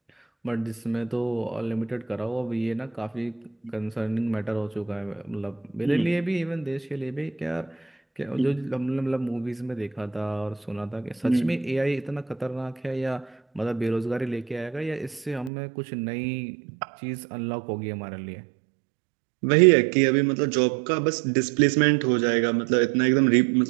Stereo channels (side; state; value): left; drops out; at 15.5 s